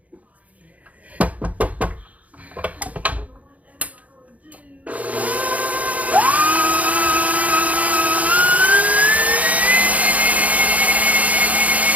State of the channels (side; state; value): left; late; 0.070 ms